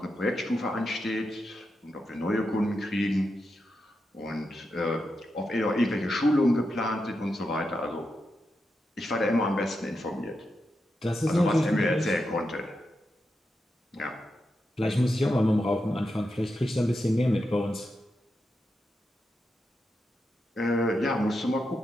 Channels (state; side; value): normal; both; correlation 0.87